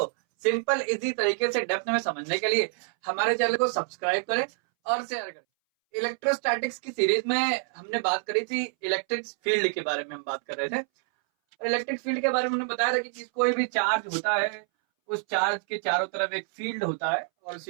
सिंपल इजी तरीके से डेप्थ में समझने के लिए हमारे चैनल को सब्सक्राइब करें और शेयर करें। इलेक्ट्रोस्टैटिक्स की सीरीज में हमने बात करी थी, इलेक्ट्रिक फील्ड के बारे में हम बात कर रहे थे। इलेक्ट्रिक फील्ड के बारे में हमने बताया था कि कोई भी चार्ज होता है, उस चार्ज के चारों तरफ एक फील्ड होता है और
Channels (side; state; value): left; silent; 60 dB below the other